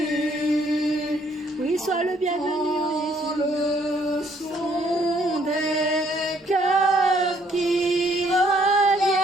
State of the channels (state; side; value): normal; both; correlation 0.66